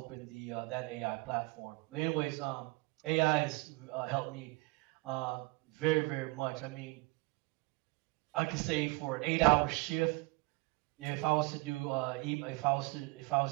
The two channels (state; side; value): quieter; left; 24.8 dB